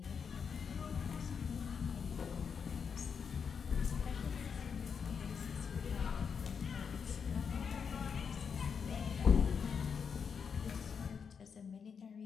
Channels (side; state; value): right; quieter; 6.4 dB